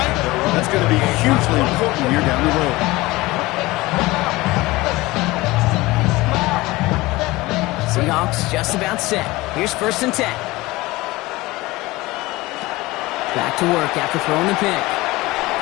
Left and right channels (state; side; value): quieter; right; 20.3 dB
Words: That's going to be hugely important here down the road. Seahawks just about set. Here's first and 10. Back to work after throwing the pick.